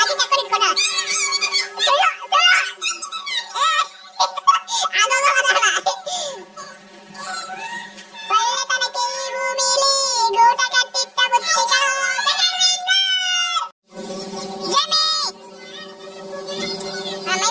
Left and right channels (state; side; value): identical; both; correlation 1.00